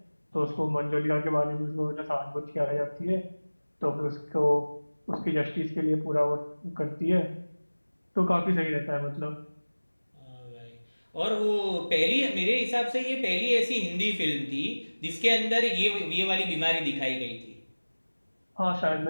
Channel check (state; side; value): inverted; both; correlation -1.00